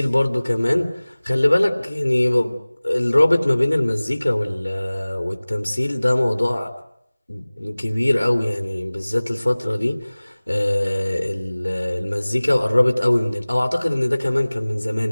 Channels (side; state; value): both; inverted; correlation -0.99